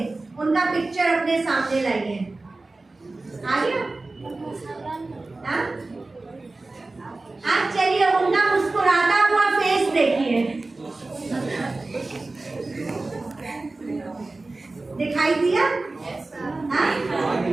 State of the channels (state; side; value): quieter; left; 3.2 dB